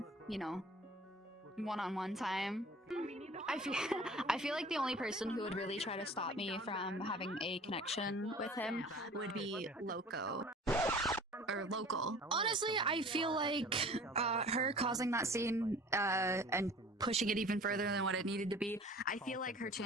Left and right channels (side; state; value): both; normal; correlation 0.45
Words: you know, one-on-one time. I feel like the only person who would really try to stop me from having a connection with him would be Loco. Or Local. Honestly, I feel like her causing that scene and pushing it even further than what it needed to be, I feel like her